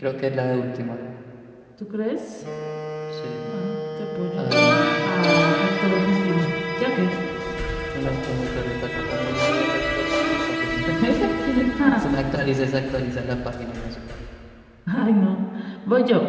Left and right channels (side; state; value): both; identical; correlation 1.00